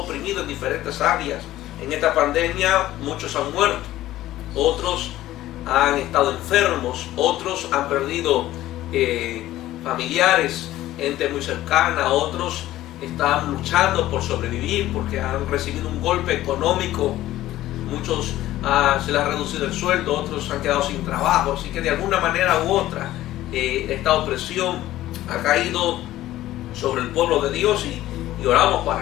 en diferentes áreas. En esta pandemia muchos han muerto, otros han estado enfermos, otros han perdido familiares, gente muy cercana, otros están luchando por sobrevivir porque han recibido un golpe económico. Muchos se les ha reducido el sueldo, otros han quedado sin trabajo. Así que de alguna manera u otra esta opresión ha caído sobre el pueblo de Dios, y oramos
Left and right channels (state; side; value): quieter; right; 14.8 dB